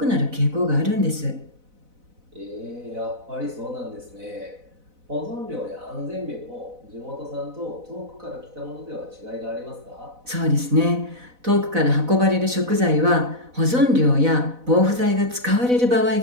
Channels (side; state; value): left; late; 4.0 ms